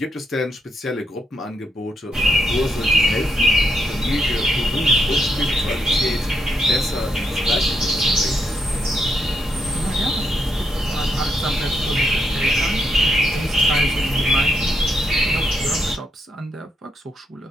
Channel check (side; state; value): both; normal; correlation 0.78